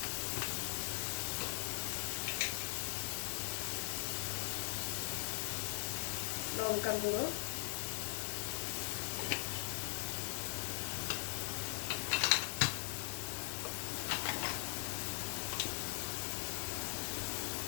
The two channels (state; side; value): silent; right; digital silence